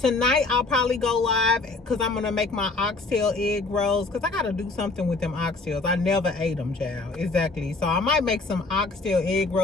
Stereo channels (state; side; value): quieter; right; 3.5 dB